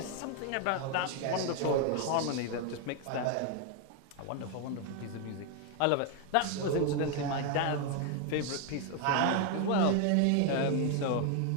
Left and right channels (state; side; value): different; both; correlation 0.01